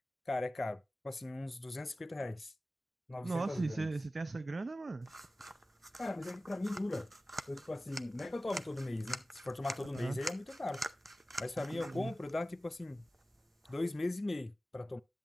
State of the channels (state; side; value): normal; both; correlation 0.96